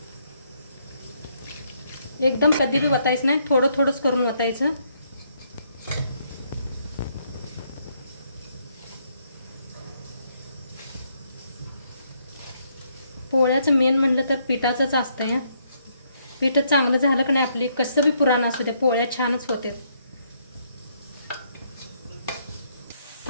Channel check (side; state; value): both; inverted; correlation -0.72